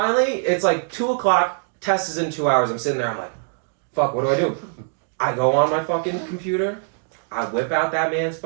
it's like 2 o'clock, test is in 2 hours. I'm sitting there, I'm like, fuck, what do? I go on my fucking computer, I whip out that man's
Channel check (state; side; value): silent; left; digital silence